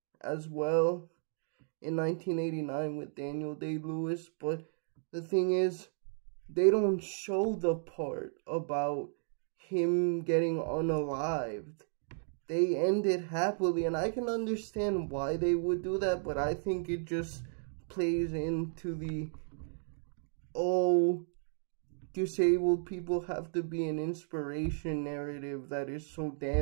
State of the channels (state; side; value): silent; left; digital silence